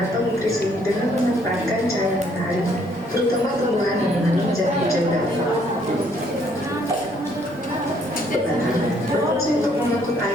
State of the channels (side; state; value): right; noise; rumble, 25 dB below the sound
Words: nutrisi dengan memanfaatkan cahaya matahari, terutama tumbuhan yang mengandung zat hijau daun. Berfungsi untuk mengangkut